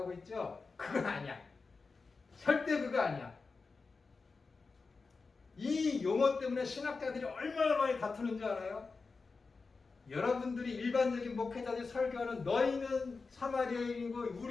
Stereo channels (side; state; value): right; quieter; 4.3 dB